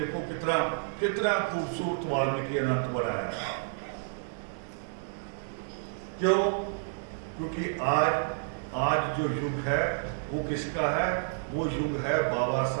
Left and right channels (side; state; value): left; silent; digital silence